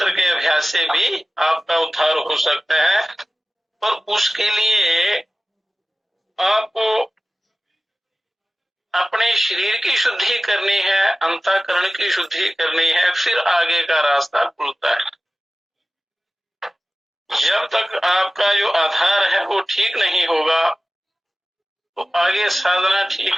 के अभ्यास से भी आपका उद्धार हो सकता है, पर उसके लिए आपको अपने शरीर की शुद्धि करनी है, अंतःकरण की शुद्धि करनी है, फिर आगे का रास्ता खुलता है। जब तक आपका जो आधार है वो ठीक नहीं होगा तो आगे साधना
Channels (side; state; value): both; normal; correlation 0.96